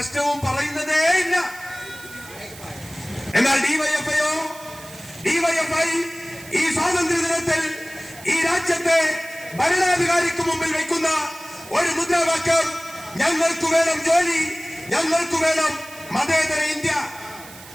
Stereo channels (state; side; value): noise; right; hiss, 18 dB below the sound